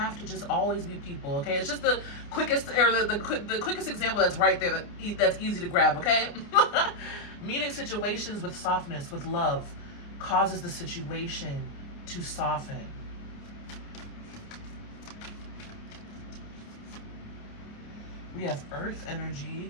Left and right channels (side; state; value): right; late; 29 ms